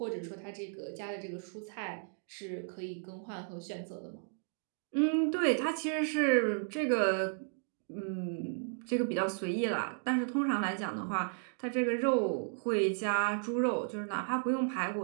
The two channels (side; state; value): left; silent; digital silence